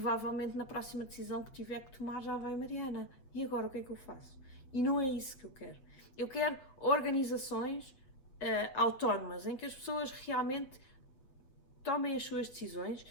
na próxima decisão que tiver que tomar já vai, Mariana, e agora o que é que eu faço? E não é isso que eu quero. Eu quero organizações autónomas, em que as pessoas realmente tomem as suas decisões,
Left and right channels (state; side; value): late; right; 7.5 ms